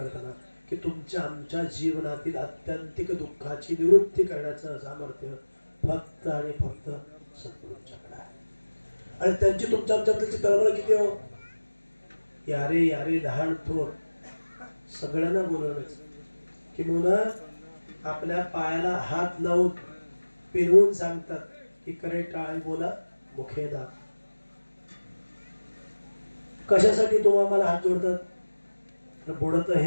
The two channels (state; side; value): inverted; both; correlation -1.00